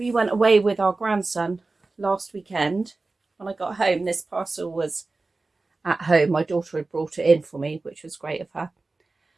went away with our grandson last weekend. When I got home, this parcel was at home. My daughter had brought it in for me, which was great of her.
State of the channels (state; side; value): quieter; left; 3.5 dB